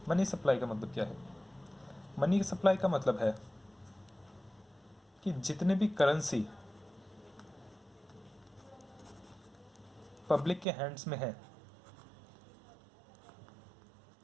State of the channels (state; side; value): drops out; left; at 10.7 s